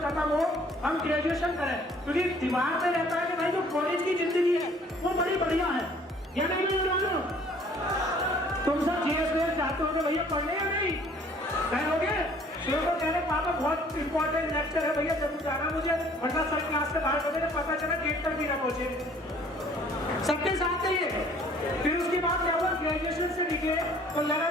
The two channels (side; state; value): both; normal; correlation 0.56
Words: खत्म हो, हम ग्रेजुएशन करें, क्योंकि दिमाग में रहता है कि भाई जो कॉलेज की जिंदगी है वो बड़ी बढ़िया है। या नहीं जानो, तुम सब जीएस चाहते हो भैया पढ़ने या नहीं कहोगे? शुरू को कह रहे पापा बहुत इंपॉर्टेंट लेक्चर है भैया, जरूर जाना मुझे, वरना सर क्लास से बाहर होने पता चला गेट तक भी ना पहुंचे। सबके साथ चाहिए। फिर उसके बाद क्या हुआ, ग्रेजुएशन से निकले तो लगा